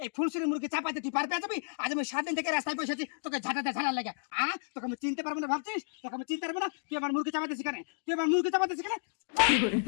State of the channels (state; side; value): silent; right; digital silence